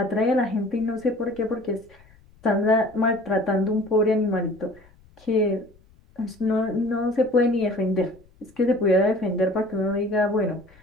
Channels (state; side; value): noise; left; rumble, 28 dB below the sound